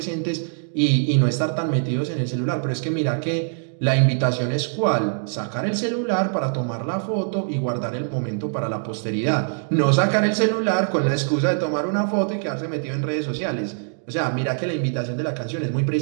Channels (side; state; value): left; silent; digital silence